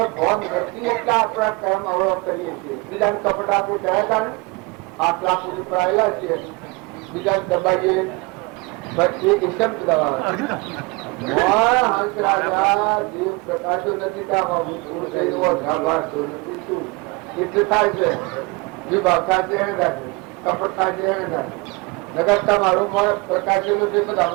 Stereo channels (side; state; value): left; quieter; 26.0 dB